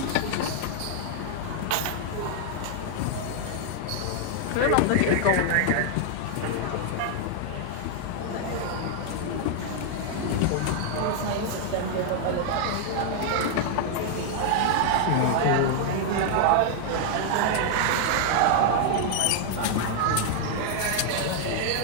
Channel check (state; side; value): different; both; correlation 0.00